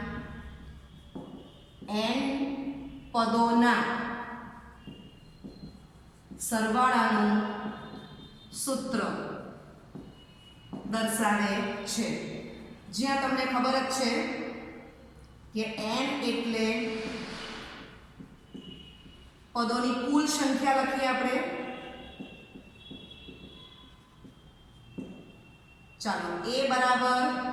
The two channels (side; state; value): both; identical; correlation 1.00